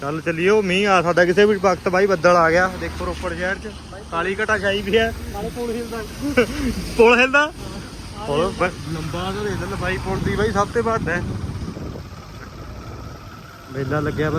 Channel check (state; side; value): identical; both; correlation 1.00